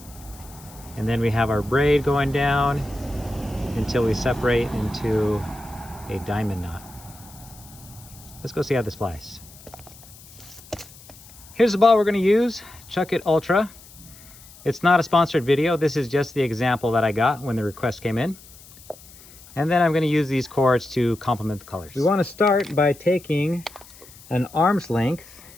and then we have our braid going down until we separate into a diamond knot. Let's go see how this flies. Here's the ball we're going to use, Chuckit Ultra. It's not a sponsored video. This is just the example that I got when the request came in. And then I'm going to use these cords to complement the colors. We want to start by taking an arm's length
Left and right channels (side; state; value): left; noise; hiss, 21 dB below the sound